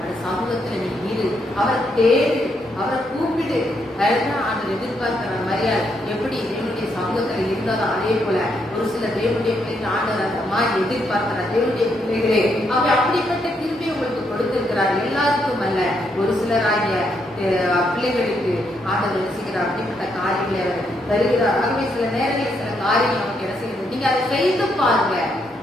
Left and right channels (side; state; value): both; normal; correlation 0.76